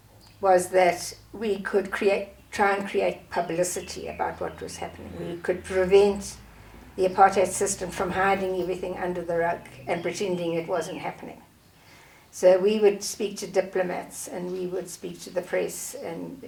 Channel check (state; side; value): identical; both; correlation 1.00